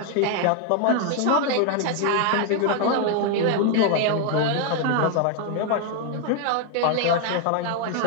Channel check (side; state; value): both; different; correlation 0.00